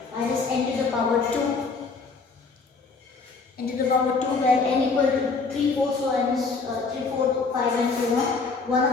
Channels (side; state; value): right; quieter; 4.4 dB